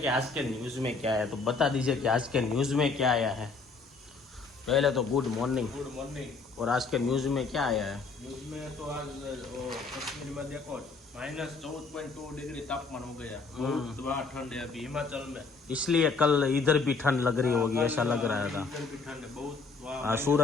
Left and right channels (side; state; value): right; quieter; 4.4 dB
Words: कि आज के न्यूज में क्या है, तो बता दीजिए कि आज के न्यूज में क्या आया है। पहले तो गुड मॉर्निंग। Good morning. और आज के न्यूज में क्या आया है? न्यूज में तो आज कश्मीर में देखो -14.2 डिग्री तापमान हो गया। बहुत वहाँ ठंड है अभी हिमाचल में, इसलिए कल इधर भी ठंड लग रही होगी, ऐसा लग रहा था। इधर भी ठंड है बहुत वहाँ।